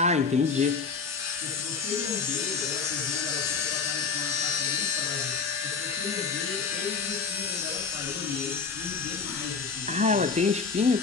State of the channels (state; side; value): quieter; right; 5.2 dB